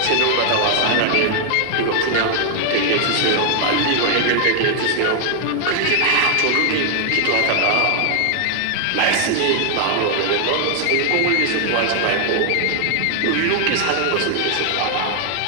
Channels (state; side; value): different; both; correlation 0.00